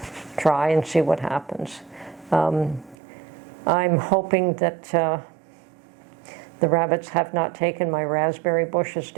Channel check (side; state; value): left; drops out; at 3.0 s